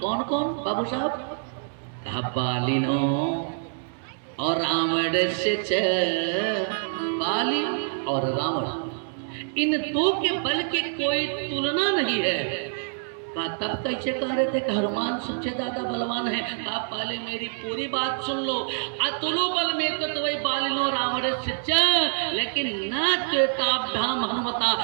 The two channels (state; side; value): silent; left; digital silence